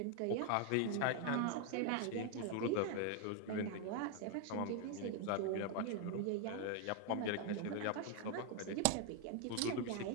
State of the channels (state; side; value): different; both; correlation 0.01